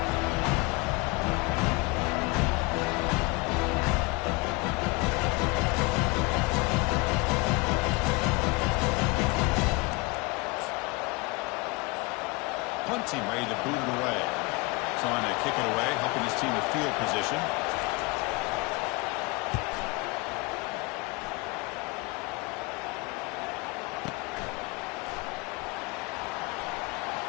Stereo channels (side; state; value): right; quieter; 25.8 dB